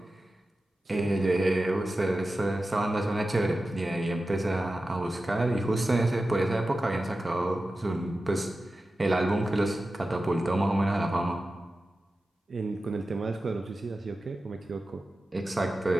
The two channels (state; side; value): normal; both; correlation 0.94